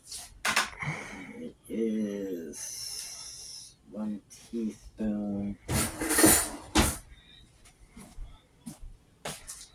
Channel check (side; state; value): both; identical; correlation 1.00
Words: It is 1 teaspoon.